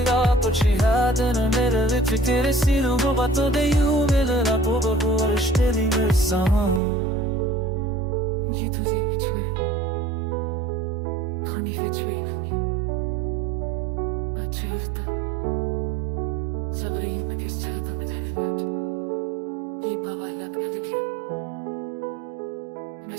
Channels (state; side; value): drops out; left; at 6.8 s